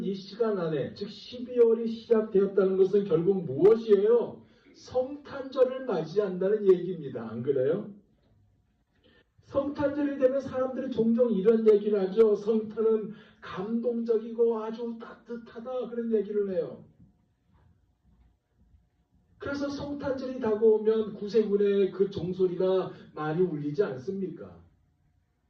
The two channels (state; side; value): identical; both; correlation 1.00